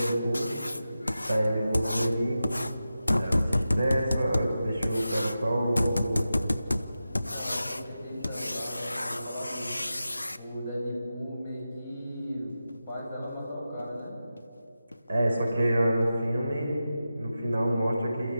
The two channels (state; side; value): inverted; both; correlation -0.92